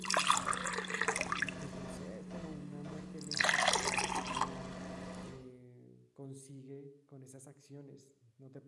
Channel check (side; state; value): both; identical; correlation 1.00